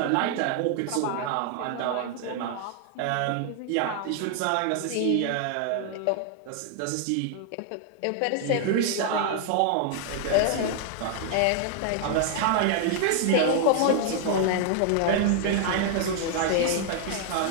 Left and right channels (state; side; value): different; both; correlation 0.00